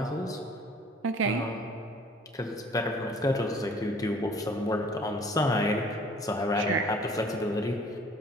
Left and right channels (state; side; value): normal; both; correlation 0.52